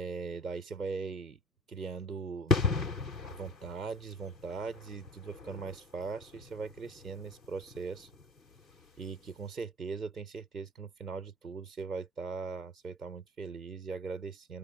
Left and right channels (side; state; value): both; normal; correlation 0.43